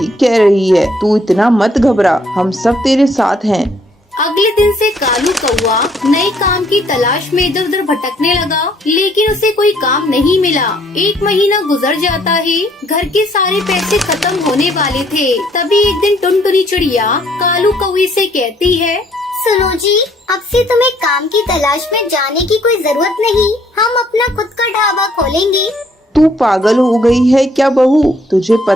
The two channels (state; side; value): normal; both; correlation 0.65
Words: कह रही है। तू इतना मत घबरा, हम सब तेरे साथ हैं। अगले दिन से कालू कौआ नए काम की तलाश में इधर उधर भटकने लगा, लेकिन उसे कोई काम नहीं मिला। 1 महीना गुजर जाता है। घर के सारे पैसे खत्म होने वाले थे। तभी एक दिन टुनटुनी चिड़िया कालू कौवे से कहती है, सुनो जी, अब से तुम्हें काम की तलाश में जाने की कोई जरूरत नहीं। हम अपना खुद का ढाबा खोलेंगे। तू पागल हो गई है क्या बहू? तुझे